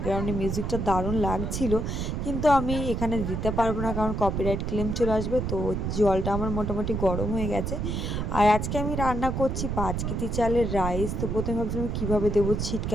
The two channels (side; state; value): right; noise; rumble, 2 dB below the sound